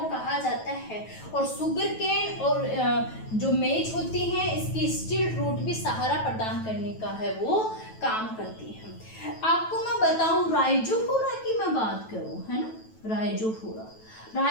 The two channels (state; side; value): late; right; 9.2 ms